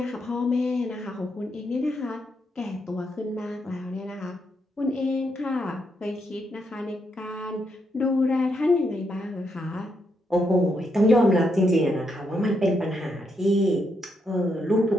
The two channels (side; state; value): both; normal; correlation 0.79